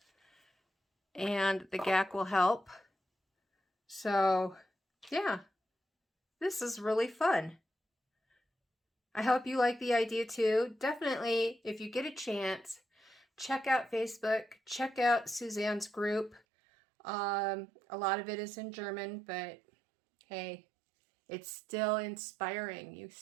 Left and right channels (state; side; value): drops out; left; at 16.4 s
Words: and the gack will help. So yeah, this is really fun. I hope you like the idea too. Definitely, if you get a chance, check out Facebook, check out Susanne's group. A lot of it is in German, but hey, it's still inspiring. You